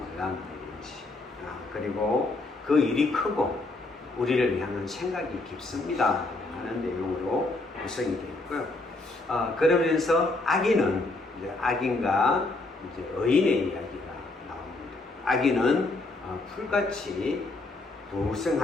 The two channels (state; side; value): quieter; right; 3.1 dB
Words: 일인지, 그리고 그 일이 크고 우리를 향한 생각이 깊습니다 하는 내용으로 구성이 되어 있고요. 그러면서 악인과 의인의 이야기가 나옵니다. 악인은 풀같이